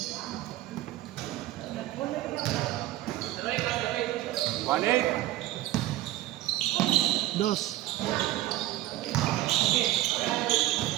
One eight. Dos.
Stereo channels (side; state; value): left; quieter; 15.5 dB